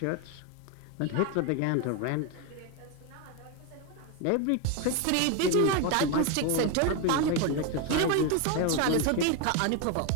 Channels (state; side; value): different; both; correlation 0.02